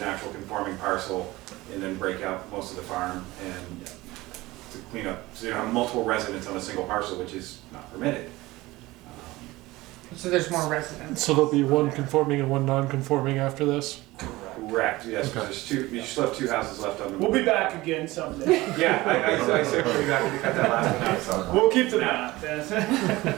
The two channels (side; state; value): left; quieter; 19.4 dB